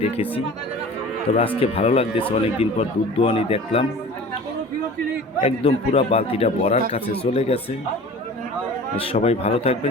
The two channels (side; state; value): both; normal; correlation 0.41